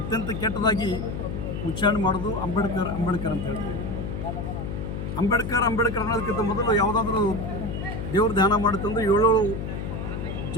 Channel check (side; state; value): left; noise; hum, 5 dB below the sound